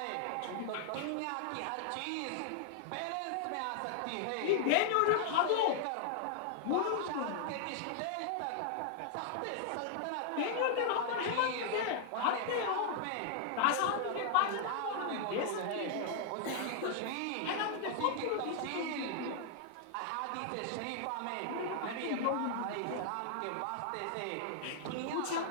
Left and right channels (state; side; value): different; both; correlation -0.01